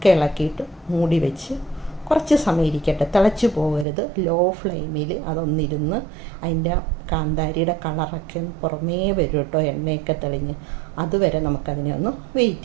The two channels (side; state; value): left; drops out; at 3.9 s